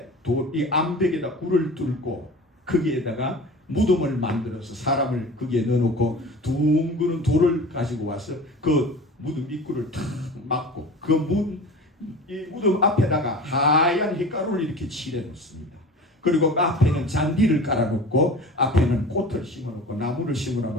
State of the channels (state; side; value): normal; both; correlation 0.37